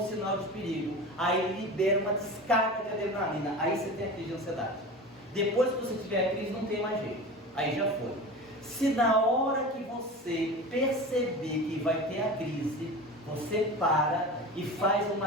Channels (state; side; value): normal; both; correlation 0.32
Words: sinal de perigo. Aí ele libera uma descarga de adrenalina. Aí você tem a crise de ansiedade. Depois que você tiver a crise, não tem mais jeito. Aí já foi. Se na hora que você perceber que vai ter a crise, você para e faz